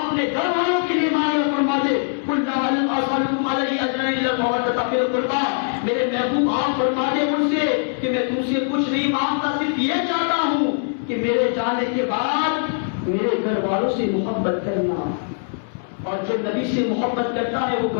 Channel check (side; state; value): right; silent; 64 dB below the other